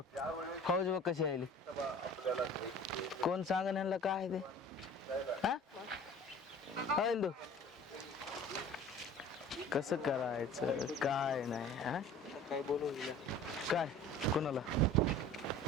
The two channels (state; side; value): normal; both; correlation 0.44